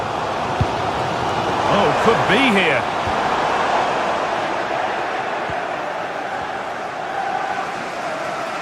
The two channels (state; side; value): identical; both; correlation 1.00